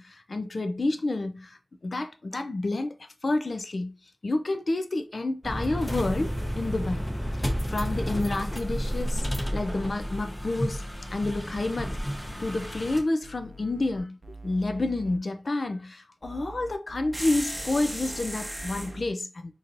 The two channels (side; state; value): both; normal; correlation 0.97